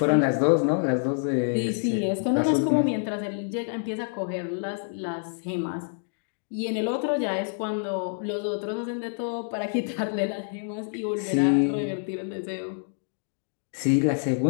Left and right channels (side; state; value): right; silent; digital silence